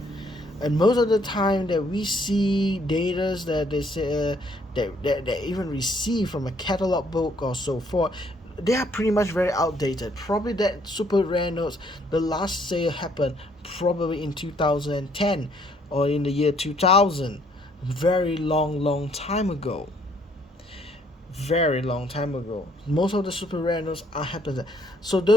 And most of the time that we see data that they say that even receive from a catalog book or so forth, they are pretty much very outdated. Probably that super rare notes, the last sale happened probably in 2010 or in the year 2000. Very long time ago. Very long time ago. Most of the super rare notes are happening. So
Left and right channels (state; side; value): normal; both; correlation 0.65